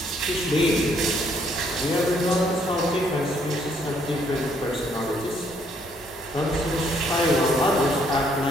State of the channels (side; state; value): both; normal; correlation 0.68